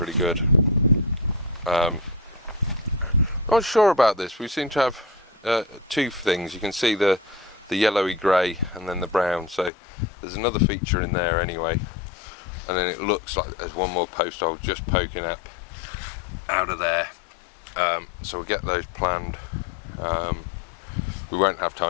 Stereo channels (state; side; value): drops out; right; at 9.7 s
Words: good. Not sure about this. We seem to have two things. You can see the yellowy grey and then the brown. So there's another feature in there anyway. And then it looks like there's one more post hole just poking up out of there. So we'll get those planned. We won't have